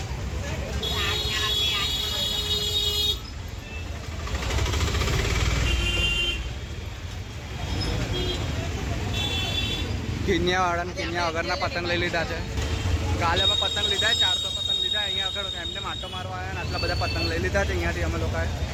કિન્યાવાળાને કિન્યા વગરના પતંગ લઈ લીધા છે. કાલે અમે પતંગ લીધા 400 પતંગ લીધા. અહીંયા આગળ એમને માટો મારવા આવ્યા અને આટલા બધા પતંગ લઈ લીધા છે અહીંયાથી અમે લોકોએ.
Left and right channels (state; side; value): identical; both; correlation 1.00